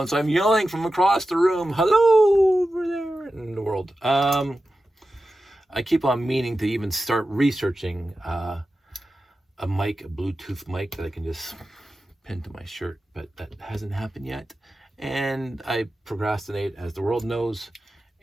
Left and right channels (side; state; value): both; normal; correlation 0.93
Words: so I'm yelling from across the room, hello over there in the world. I keep on meaning to even start researching a mic, a Bluetooth mic that I can just pin to my shirt, but that hasn't happened yet. And I procrastinate, as the world knows,